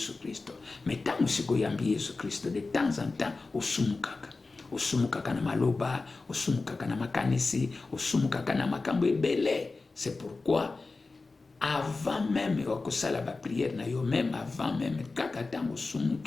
Christo. Mais tango siko yambi Yesu Christo, de temps en temps osumukaka na maloba, osumukaka na makanisi, osumukaka na makambo ebele. C'est pourquoi avant même okosala ba prière na yo, même avant même kaka tango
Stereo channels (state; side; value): quieter; right; 3.7 dB